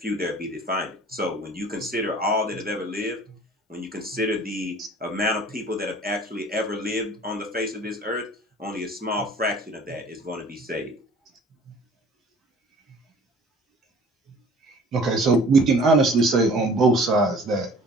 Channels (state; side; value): normal; both; correlation 0.49